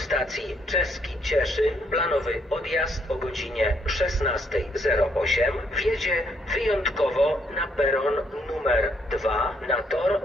Czeski Cieszyn, planowy odjazd o godzinie 16:08, wjedzie wyjątkowo na peron numer 2 na tor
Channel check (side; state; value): both; normal; correlation 0.72